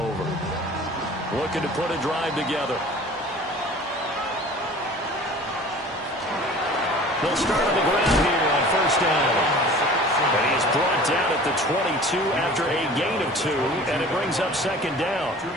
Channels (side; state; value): both; normal; correlation 0.44